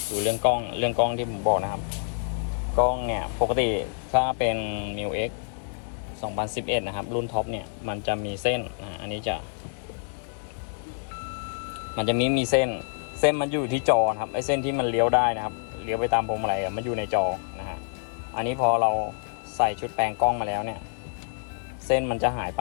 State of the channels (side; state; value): right; silent; 60 dB below the other